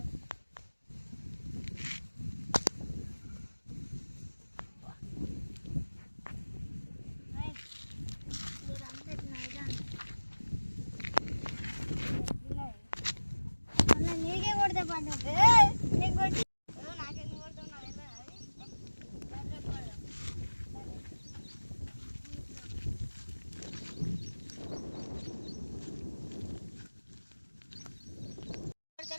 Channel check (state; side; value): inverted; both; correlation -1.00